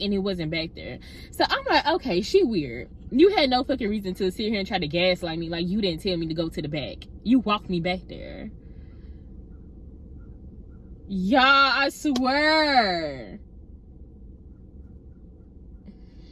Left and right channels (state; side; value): identical; both; correlation 1.00